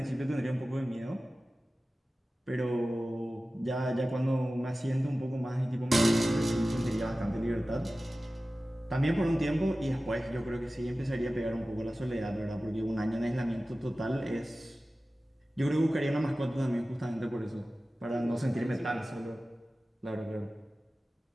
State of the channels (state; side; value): normal; both; correlation 0.96